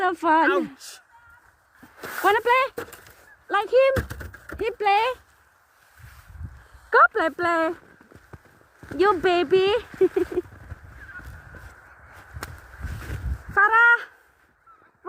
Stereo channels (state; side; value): identical; both; correlation 1.00